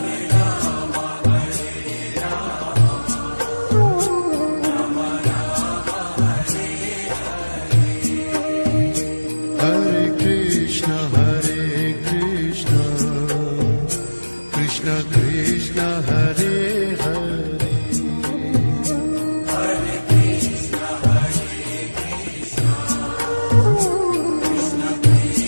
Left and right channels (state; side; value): inverted; both; correlation -1.00